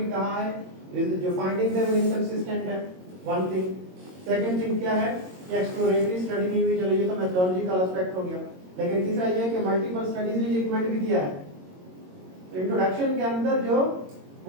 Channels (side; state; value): left; late; 22 ms